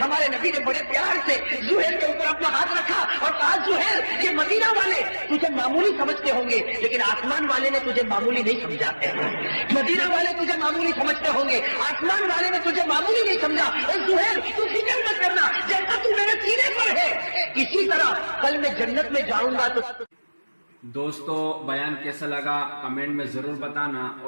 ہمارے نبی نے بڑے پیار سے زہیر کے اوپر اپنا ہاتھ رکھا اور کہا زہیر یہ مدینہ والے تجھے معمولی سمجھتے ہوں گے لیکن آسمان والے نے تجھے معمولی نہیں سمجھا، مدینہ والے تجھے معمولی سمجھتے ہوں گے، آسمان والے نے تجھے معمولی نہیں سمجھا۔ اے زہیر تو فکر مت کرنا، جیسا تو میرے سینے پر ہے اسی طرح کل میں جنت میں جاؤں گا۔ تو دوستو بیان کیسا لگا کمنٹ میں ضرور بتانا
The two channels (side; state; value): both; inverted; correlation -1.00